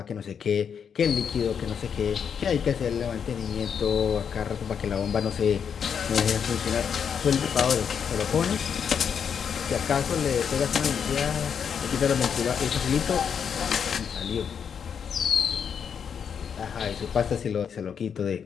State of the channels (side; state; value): right; quieter; 7.3 dB